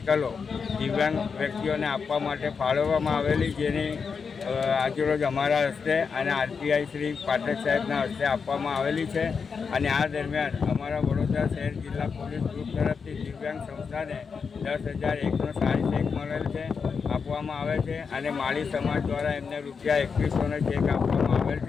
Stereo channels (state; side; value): quieter; right; 5.7 dB